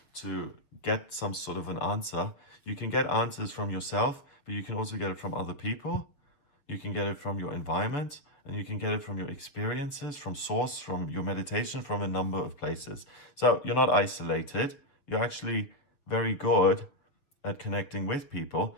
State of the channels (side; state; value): right; late; 7.3 ms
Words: to get some sort of an answer. You can get answers from yourself, but you can also get it from other people. You can get it from your environment, and you can get it from your experiences, from source, from your meditation, from a number of places. So you're not isolated. You're actually very good at connecting with people.